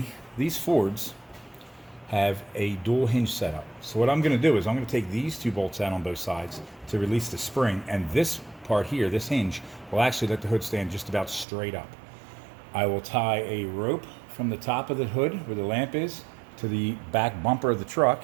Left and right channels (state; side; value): drops out; left; at 11.5 s